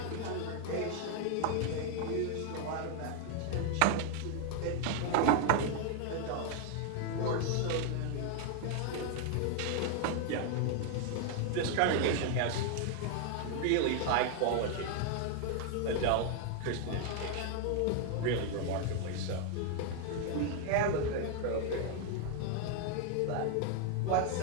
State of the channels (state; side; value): different; both; correlation 0.00